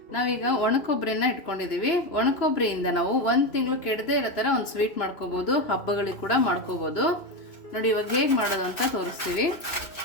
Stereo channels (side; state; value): right; late; 2.5 ms